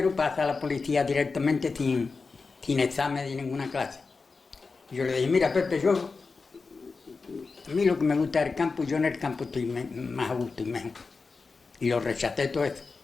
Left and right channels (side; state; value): right; quieter; 4.4 dB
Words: pasa a la policía directamente sin examen de ninguna clase. Y yo le dije, mira Pepe, a mí lo que me gusta es el campo, yo en el campo estoy más a gusto y mejor. Y lo rechacé todo eso.